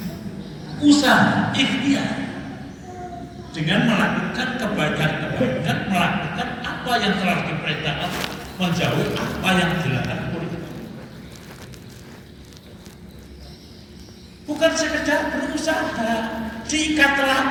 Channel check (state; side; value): identical; both; correlation 1.00